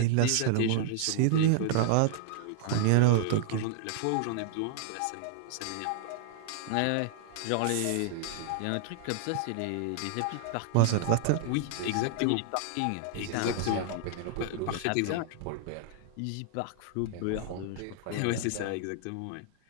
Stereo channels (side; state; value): both; different; correlation -0.01